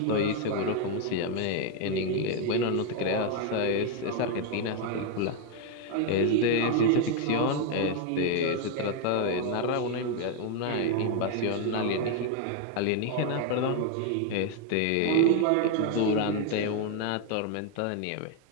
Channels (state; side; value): different; both; correlation 0.01